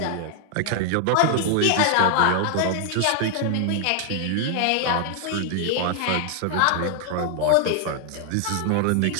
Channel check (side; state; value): both; different; correlation 0.00